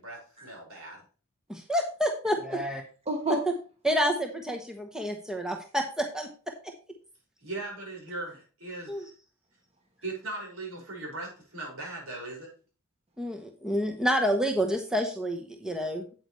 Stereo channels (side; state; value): both; normal; correlation 0.57